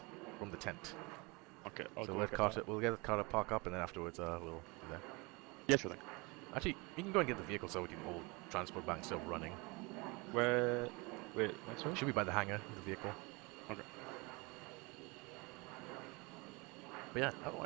from the tent. Okay. We'll get Carter park up, and then afterwards we'll do that. Yeah, sure thing. Actually, you can go and get the vehicle so we can all transport back still running. Where? Wait, sorry? Should be by the hangar, the vehicle. Okay. But yeah,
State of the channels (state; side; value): quieter; left; 27.0 dB